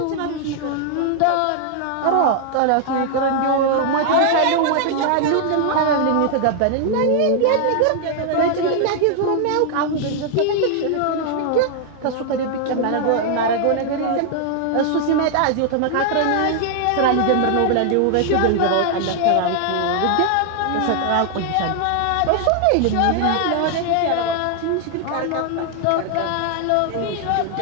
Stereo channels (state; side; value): different; both; correlation 0.00